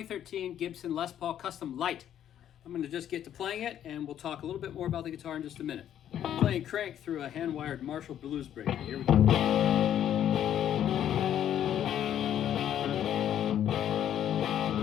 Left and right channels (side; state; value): right; quieter; 10.5 dB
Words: Gibson Les Paul Custom Lite. I'm going to just get to playing it, and we'll talk a little bit more about the guitar in just a minute. I'm playing crank through a hand-wired Marshall blues breaker. Here we go.